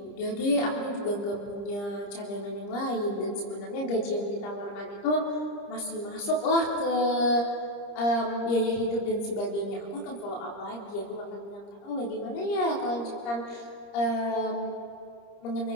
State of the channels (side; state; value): right; late; 30 ms